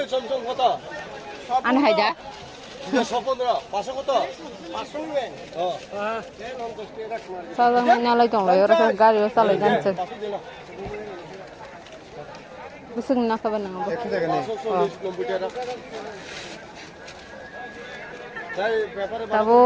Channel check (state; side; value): identical; both; correlation 1.00